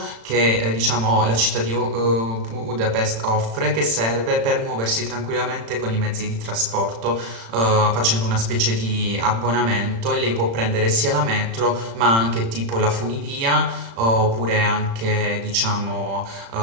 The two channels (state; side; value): late; left; 35 ms